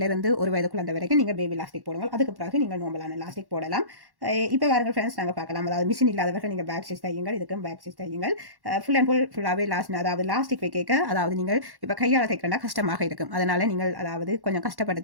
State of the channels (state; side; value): late; left; 1.1 ms